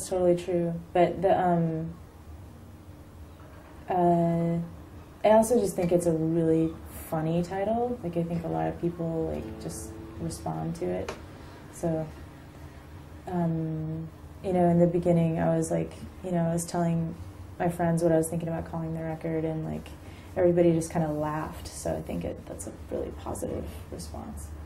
true. But I also just think it's a really funny title. Like I think a lot of people like just respond to it. So, you know, in the beginning, I was like, you know, I was telling my friends what I was thinking about calling the record, and like everybody just kind of laughed. So I think that's a really positive response.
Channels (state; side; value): identical; both; correlation 1.00